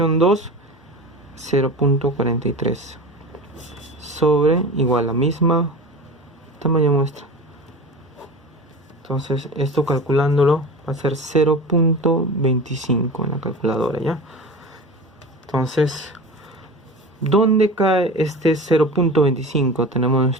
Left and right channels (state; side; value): normal; both; correlation 0.32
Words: 2, 0.43 sobre igual la misma tamaño muestra. Entonces esto calculándolo va a ser 0.25 en la calculadora, ¿ya? Entonces, ¿dónde cae este 0.25? Tenemos